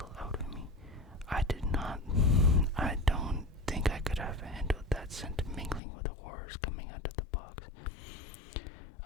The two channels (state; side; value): drops out; right; at 5.8 s